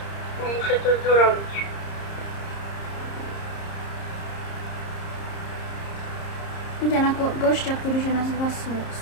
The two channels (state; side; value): late; right; 30 ms